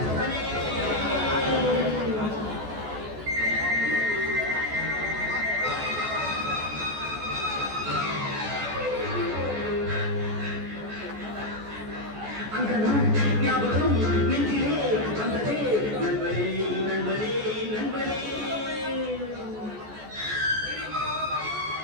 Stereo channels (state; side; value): late; left; 14 ms